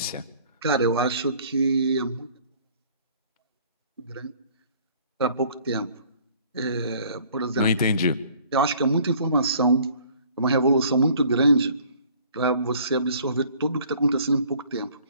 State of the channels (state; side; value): inverted; both; correlation -0.55